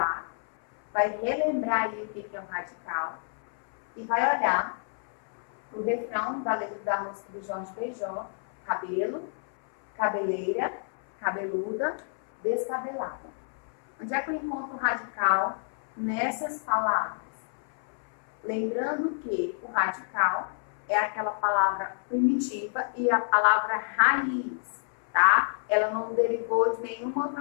vai relembrar aí o que é um radical e vai olhar o refrão da letra da música de Jorge Benjor, cabelo, cabeleira, cabeluda, descabelada. Onde é que eu encontro o radical nessas palavras? Lembrando que o radical é aquela palavra primitiva e a palavra raiz, tá? Ela não derivou de nenhuma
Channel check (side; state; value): right; silent; 59 dB below the other